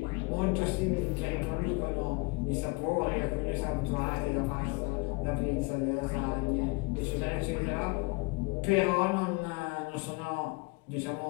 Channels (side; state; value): right; quieter; 27.4 dB